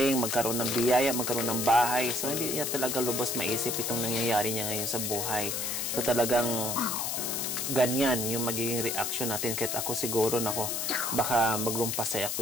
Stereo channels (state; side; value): noise; left; hiss, 1 dB below the sound